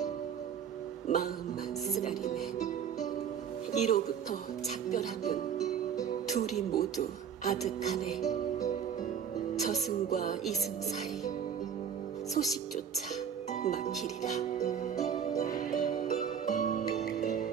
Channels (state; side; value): quieter; left; 7.9 dB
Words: 마음만 쓰라리네. 이로부터 작별하면 둘이 모두 아득하네. 저승과 이승 사이 소식조차 막히리라.